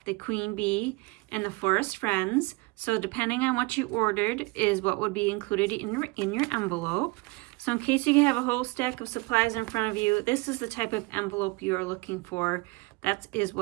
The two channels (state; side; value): quieter; left; 25.9 dB